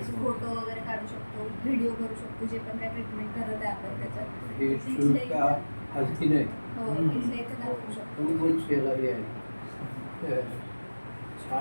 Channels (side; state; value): both; inverted; correlation -1.00